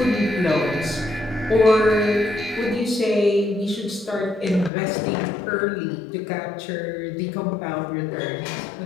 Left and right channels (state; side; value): drops out; right; at 4.7 s